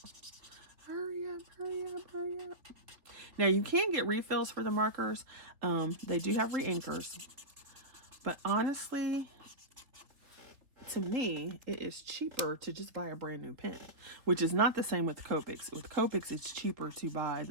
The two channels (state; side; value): late; left; 3.2 ms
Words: Hurry up, hurry up, hurry up. Now you can get refills for the markers. They do have re-inkers. But honestly, to me, it is cheaper to just buy a brand new pen, which is not the same with Copics. With Copics, it's cheaper to buy